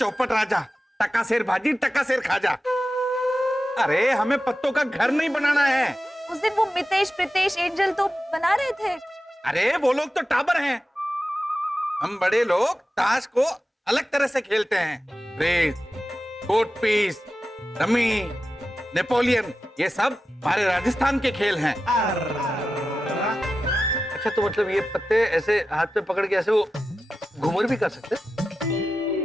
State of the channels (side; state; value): both; normal; correlation 0.93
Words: राजा, टका शेर भाजी टका शेर खाजा। अरे हमें पत्तों का घर नहीं बनाना है। उस दिन वो मितेश प्रीतेश एंजल तो बना रहे थे। अरे वो लोग तो टाबर हैं, हम बड़े लोग ताश को अलग तरह से खेलते हैं। Race, court piece, rummy, Napoleon, ये सब हमारे राजस्थान के खेल हैं। अच्छा, तो मतलब ये पत्ते ऐसे हाथ पे पकड़ के ऐसे वो घूमर भी कर सकते?